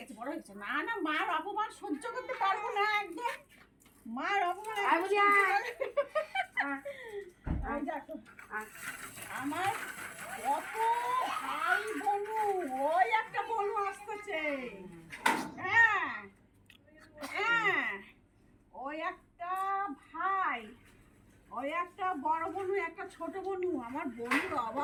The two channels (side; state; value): both; identical; correlation 1.00